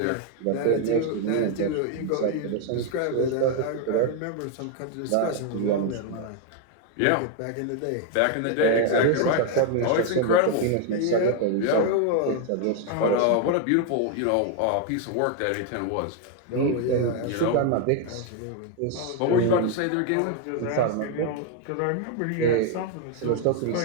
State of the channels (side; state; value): both; different; correlation 0.01